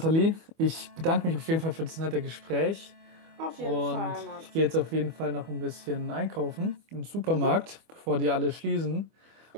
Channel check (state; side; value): late; left; 25 ms